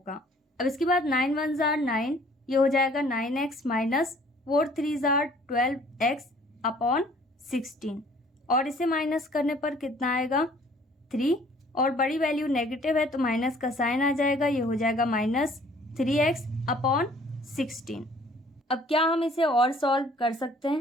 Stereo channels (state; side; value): normal; both; correlation 0.56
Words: अब इसके बाद 9 1 जार 9, ये हो जाएगा 9x minus 4 3 jar 12x upon 16, और इसे माइनस करने पर कितना आएगा 3, और बड़ी वैल्यू नेगेटिव है तो माइनस का साइन आ जाएगा, ये हो जाएगा माइनस 3x अपॉन 16। अब क्या हम इसे और सॉल्व कर सकते